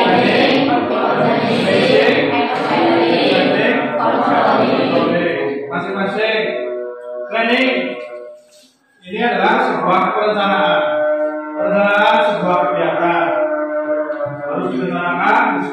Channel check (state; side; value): identical; both; correlation 1.00